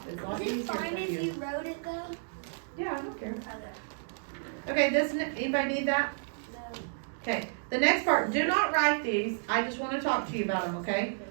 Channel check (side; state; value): left; silent; digital silence